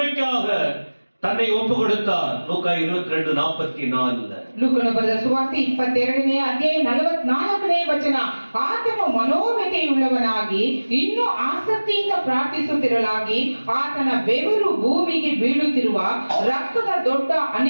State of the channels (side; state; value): both; inverted; correlation -1.00